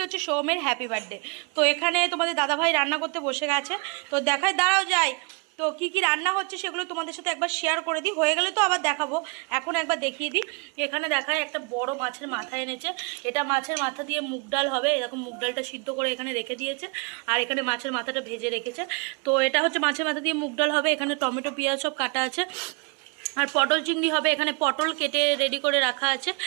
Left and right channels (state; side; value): quieter; left; 33.3 dB